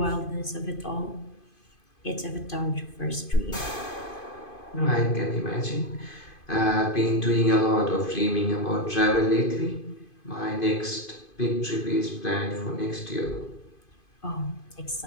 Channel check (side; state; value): right; late; 2.5 ms